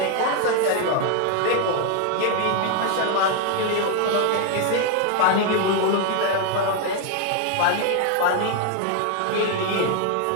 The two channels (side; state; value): both; different; correlation 0.01